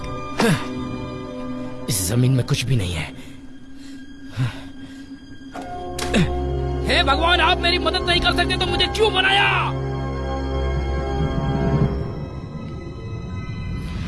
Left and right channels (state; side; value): identical; both; correlation 1.00